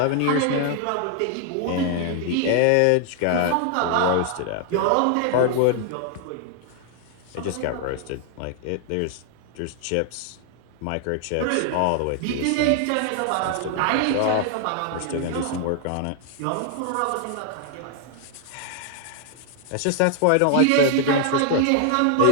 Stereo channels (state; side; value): different; both; correlation 0.00